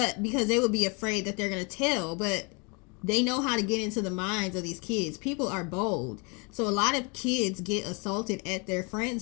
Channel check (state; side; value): quieter; right; 31.0 dB